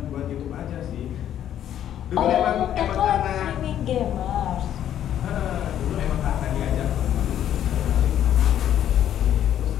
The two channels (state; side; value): quieter; right; 10.7 dB